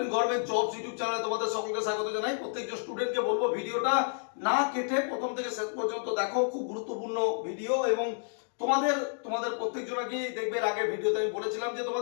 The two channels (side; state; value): right; silent; digital silence